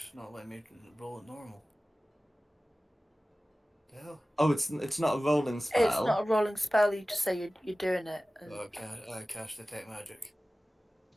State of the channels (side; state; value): both; normal; correlation 0.97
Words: not letting me roll it normal. The hell? Oh, it's not a rolling spell. It's not a rolling spell. You just say you're doing it. And... I cast detect magic.